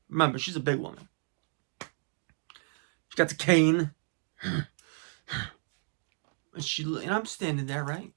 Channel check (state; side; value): silent; left; 56 dB below the other